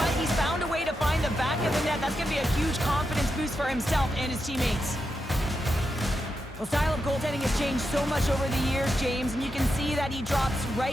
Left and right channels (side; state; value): both; normal; correlation 0.86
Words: He's found a way to find the back of the net. That's going to be a huge confidence boost for himself and his teammates. Well, style of goaltending has changed so much over the years, James, and you can see that he drops